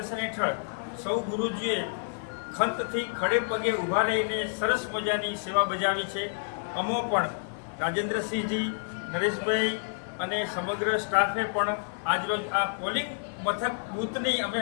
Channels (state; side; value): silent; right; digital silence